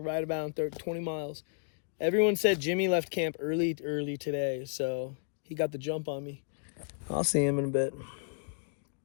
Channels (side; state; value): right; silent; digital silence